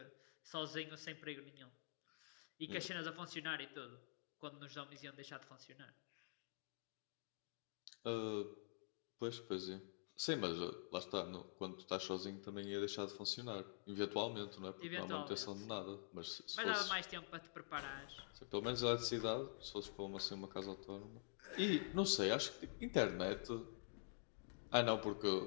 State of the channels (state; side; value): silent; right; digital silence